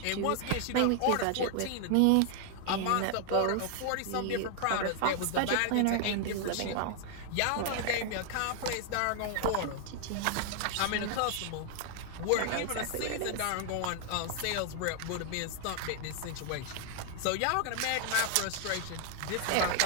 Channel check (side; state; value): both; different; correlation 0.00